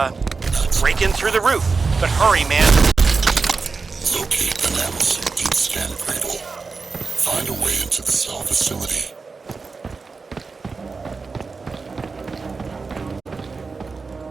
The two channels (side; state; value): left; quieter; 4.4 dB